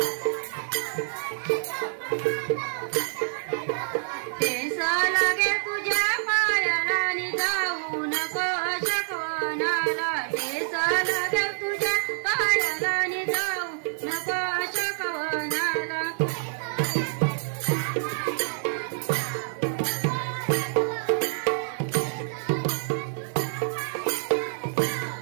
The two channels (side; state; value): left; silent; digital silence